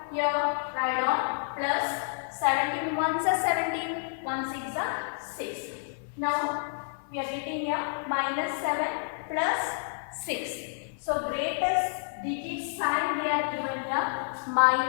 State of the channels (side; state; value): right; silent; 58 dB below the other